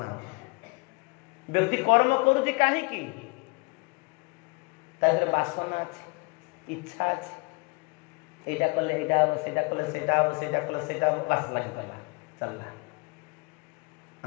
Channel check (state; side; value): quieter; right; 30.5 dB